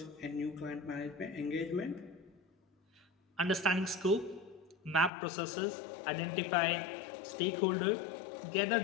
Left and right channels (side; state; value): right; drops out; at 5.1 s